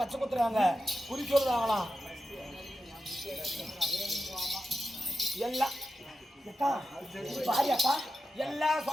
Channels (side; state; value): both; normal; correlation 0.90